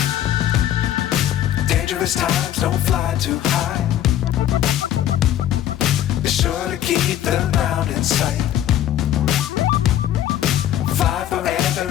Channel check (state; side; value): quieter; right; 11.6 dB